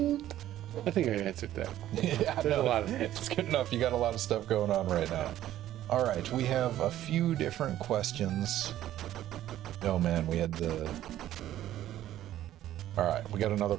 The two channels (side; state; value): left; quieter; 13.0 dB